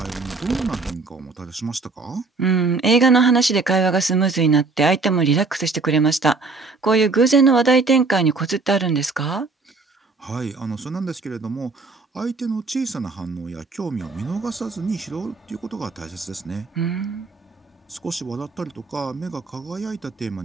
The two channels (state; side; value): quieter; left; 3.9 dB